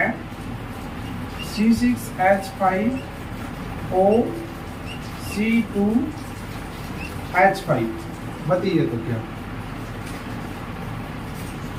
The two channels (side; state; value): both; identical; correlation 1.00